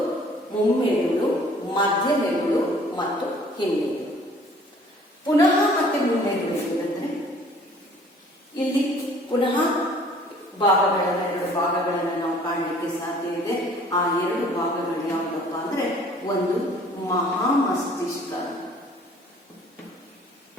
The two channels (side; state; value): both; normal; correlation 0.54